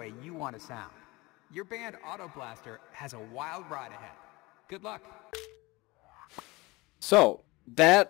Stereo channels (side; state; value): right; quieter; 22.6 dB